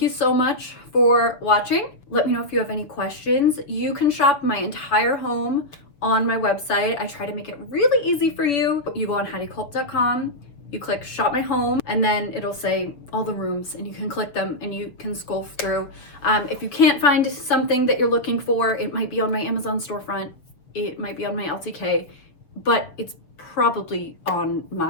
you so much for watching. Let me know if you have any questions. You can shop my entire home on my website. I try to make it really easy for you. You go on HeidiKulp.com, you click shop my home, and then it'll say all the rooms, and you can click them and you can scroll through. If you can't find something that you're looking for, it might be on my Amazon storefront, it might be on my LTK, but it's probably on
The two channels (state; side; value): late; right; 6.7 ms